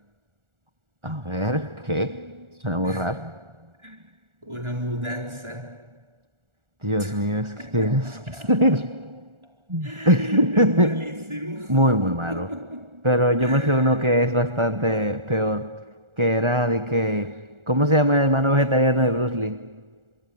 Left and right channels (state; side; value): late; left; 1.4 ms